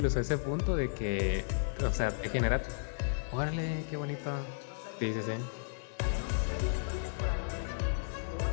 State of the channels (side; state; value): right; silent; digital silence